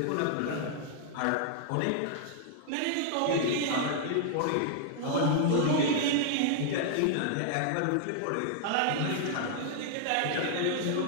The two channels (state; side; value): different; both; correlation 0.00